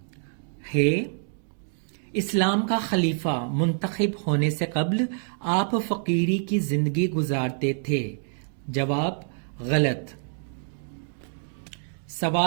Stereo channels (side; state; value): left; silent; 61 dB below the other